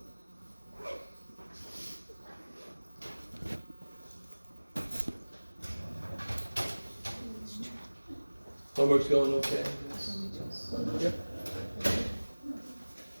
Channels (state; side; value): inverted; both; correlation -1.00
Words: Homework's going okay? Yep.